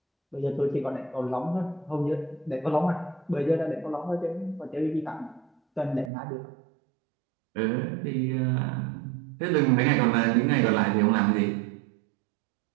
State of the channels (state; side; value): drops out; left; at 6.1 s